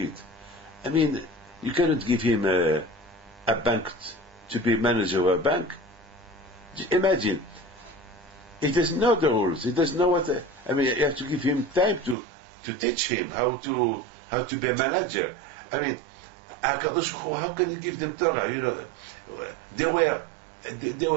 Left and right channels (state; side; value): drops out; left; at 12.2 s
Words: I mean, you cannot give him a bank to be manager of a bank. Just imagine, he doesn't know the rules. He doesn't know what. You have to give him time to teach him how to be a manager. I mean, HaKadosh Baruch Hu, how can you give them Torah? They were